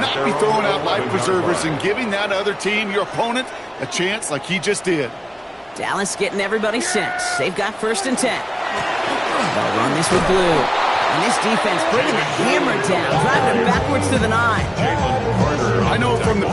be throwing out life preservers and giving that other team, your opponent, a chance like he just did. Dallas getting everybody set. They've got 1st and 10. They'll run this with blue. And this defense bringing the hammer down, driving it backwards to the 9. I know from the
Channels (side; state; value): both; identical; correlation 1.00